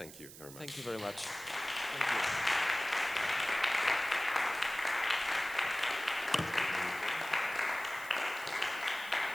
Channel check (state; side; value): noise; right; hiss, 16 dB below the sound